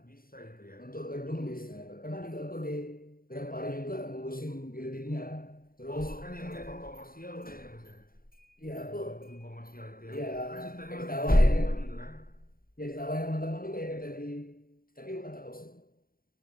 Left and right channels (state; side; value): late; right; 0.42 ms